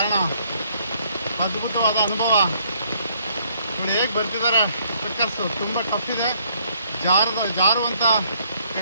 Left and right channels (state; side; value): inverted; both; correlation -0.66